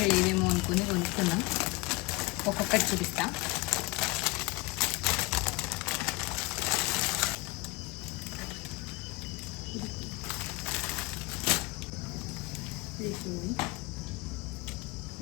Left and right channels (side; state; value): right; quieter; 23.9 dB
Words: లేవేమో అనుకుని కొనుక్కున్నాం. ఒక్కొక్కటి చూపిస్తా.